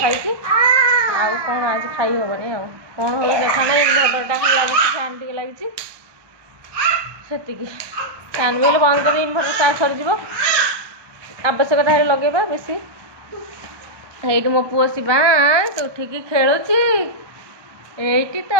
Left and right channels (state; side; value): late; left; 1.2 ms